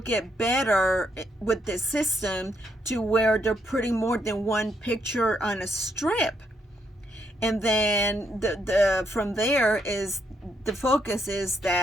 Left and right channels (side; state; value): both; normal; correlation 0.76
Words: better with the system to where they're putting more than one picture on a strip. And then from there is the focus is